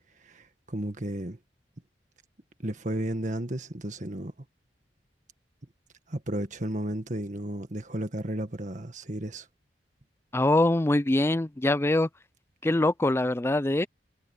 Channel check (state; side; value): normal; both; correlation 0.81